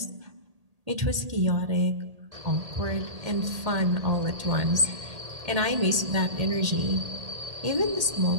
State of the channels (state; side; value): late; left; 1.8 ms